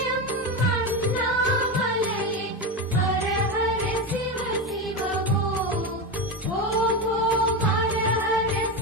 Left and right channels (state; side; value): normal; both; correlation 0.16